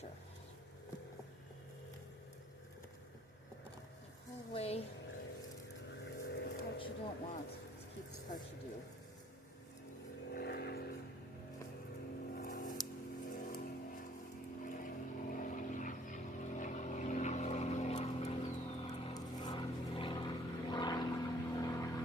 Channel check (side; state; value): both; normal; correlation 0.58